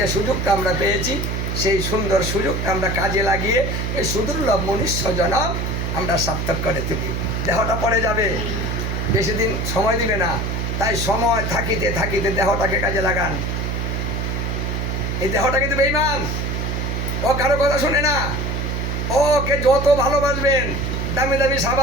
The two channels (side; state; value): right; noise; hum, 1 dB below the sound